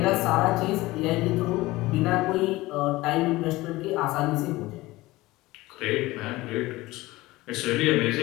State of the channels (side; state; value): right; quieter; 19.3 dB